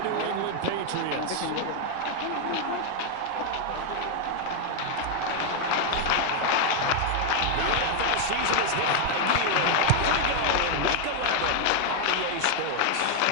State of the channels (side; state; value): both; different; correlation 0.00